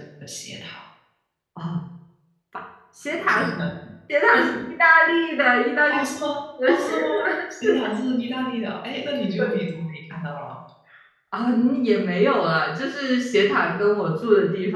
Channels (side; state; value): both; identical; correlation 1.00